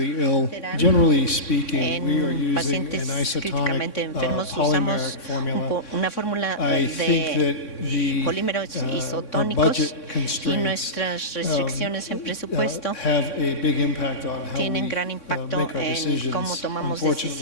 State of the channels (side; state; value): right; late; 3.6 ms